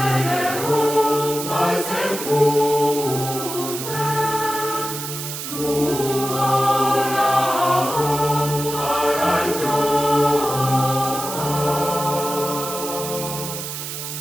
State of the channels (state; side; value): noise; right; hiss, 7 dB below the sound